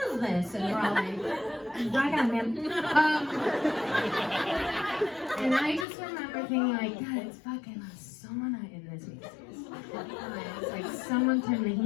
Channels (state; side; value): drops out; right; at 5.9 s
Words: this? And we're all like, rock on, man. And I just remember thinking like, God, it's fucking sauna in this Macy's. It's like someone turned the